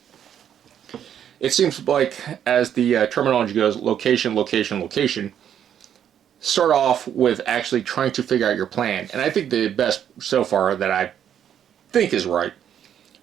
It seems like, as the terminology goes, location, location, location. Start off with actually trying to figure out your plan. And I think the best so far that I think is right.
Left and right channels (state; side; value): quieter; left; 9.4 dB